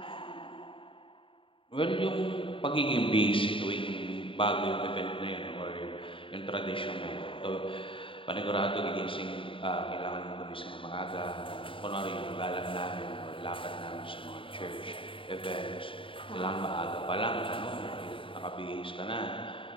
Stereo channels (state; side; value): late; right; 0.25 ms